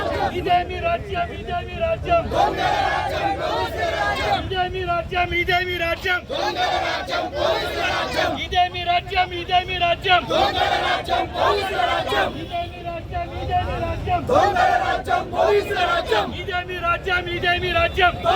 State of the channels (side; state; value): both; identical; correlation 1.00